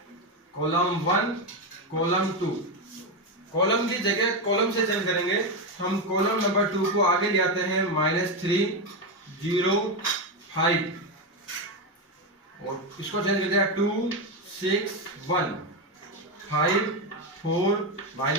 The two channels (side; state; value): both; normal; correlation 0.10